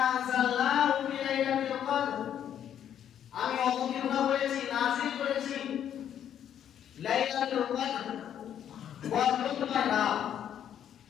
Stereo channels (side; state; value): right; quieter; 9.8 dB